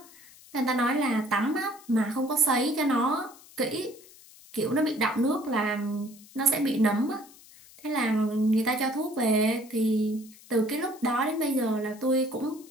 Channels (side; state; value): left; noise; hiss, 22 dB below the sound